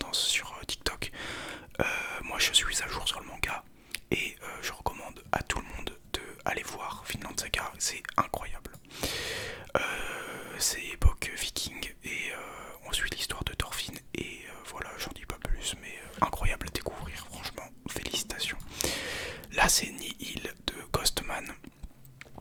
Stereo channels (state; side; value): identical; both; correlation 1.00